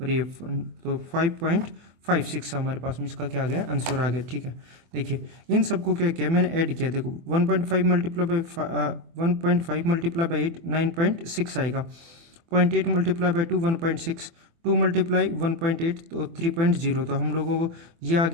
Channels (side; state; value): left; late; 24 ms